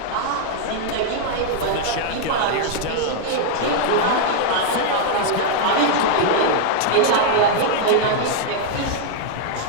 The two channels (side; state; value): both; different; correlation 0.00